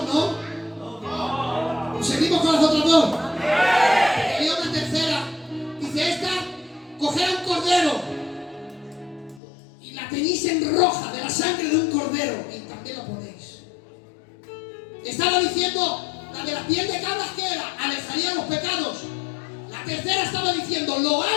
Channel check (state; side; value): drops out; right; at 9.4 s